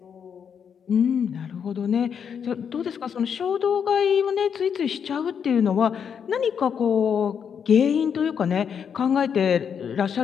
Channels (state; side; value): quieter; right; 7.4 dB